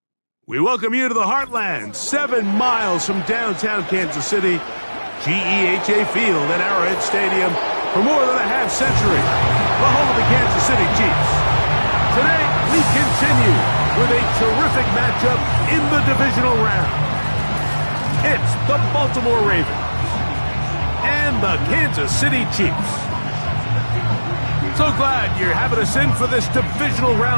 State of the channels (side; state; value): both; inverted; correlation -1.00